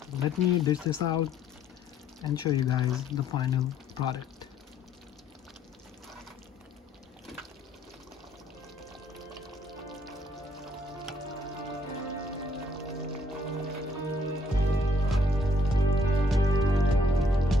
Let me dish this out and show you guys the final product.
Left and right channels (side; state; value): both; normal; correlation 0.65